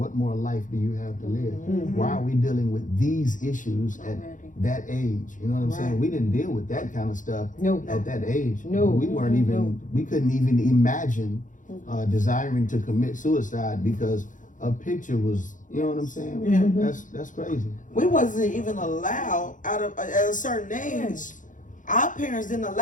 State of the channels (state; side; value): late; right; 0.37 ms